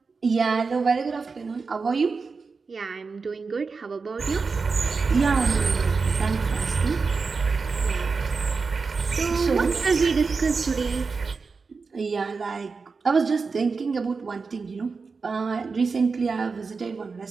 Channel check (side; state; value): left; quieter; 4.7 dB